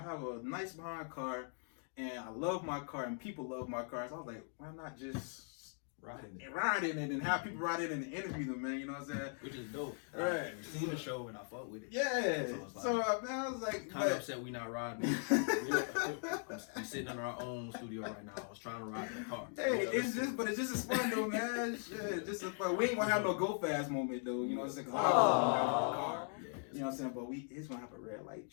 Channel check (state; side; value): silent; right; 51 dB below the other